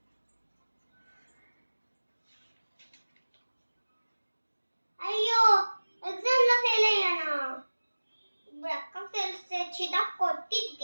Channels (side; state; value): both; inverted; correlation -1.00